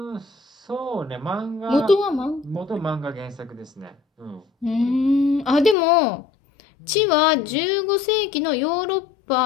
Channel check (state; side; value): drops out; right; at 5.8 s